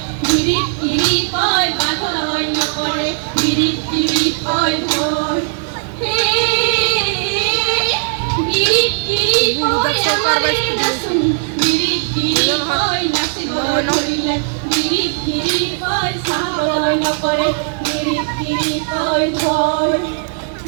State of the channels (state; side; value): silent; left; digital silence